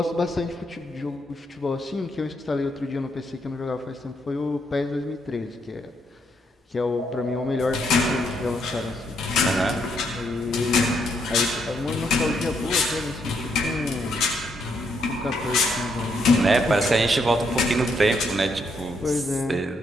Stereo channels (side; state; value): both; normal; correlation 0.75